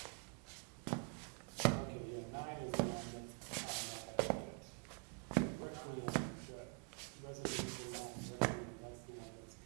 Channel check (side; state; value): left; quieter; 36.7 dB